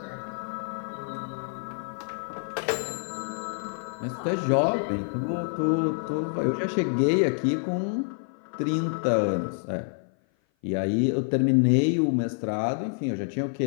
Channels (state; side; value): silent; right; 56 dB below the other